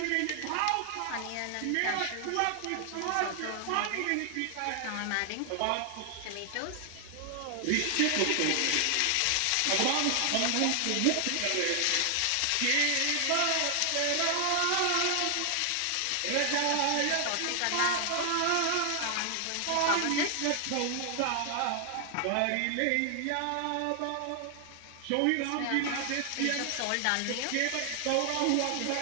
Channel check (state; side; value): different; both; correlation 0.00